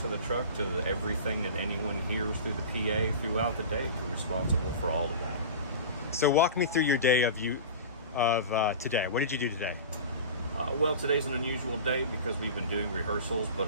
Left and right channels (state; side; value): inverted; both; correlation -0.33